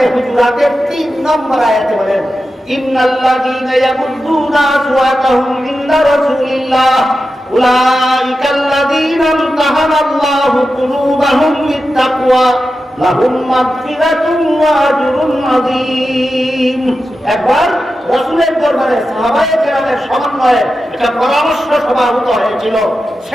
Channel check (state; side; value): normal; both; correlation 0.91